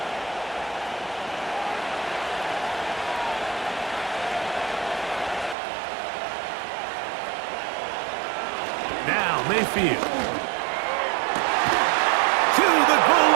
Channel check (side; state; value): left; drops out; at 5.6 s